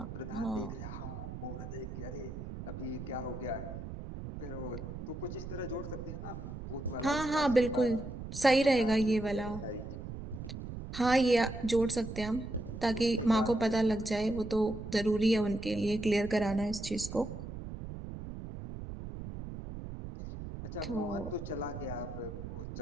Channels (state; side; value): noise; right; rumble, 9 dB below the sound